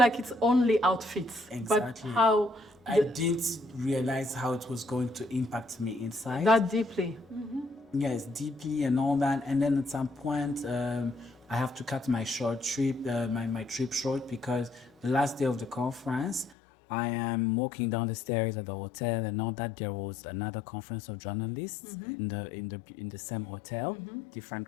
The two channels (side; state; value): right; drops out; at 16.6 s